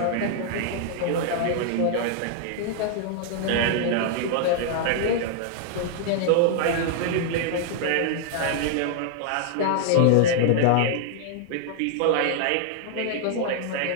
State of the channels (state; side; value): different; both; correlation -0.01